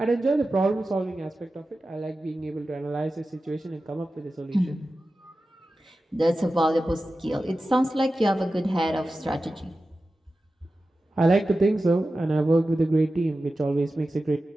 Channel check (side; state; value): both; normal; correlation 0.94